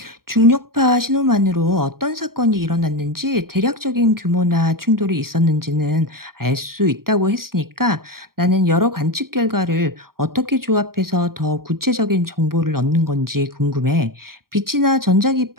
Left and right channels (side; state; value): left; late; 0.93 ms